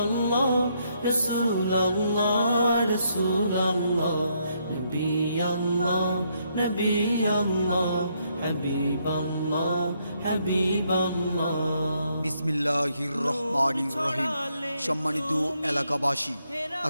আল্লাহ রাসূল আল্লাহ রাসূল আল্লাহ নবী আল্লাহ নবী আল্লাহ হাবিব আল্লাহ হাবিব আল্লাহ। বিসমিল্লাহির রহমানির রহিম। সম্মানিত এলাকাবাসী,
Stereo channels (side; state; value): both; inverted; correlation -0.74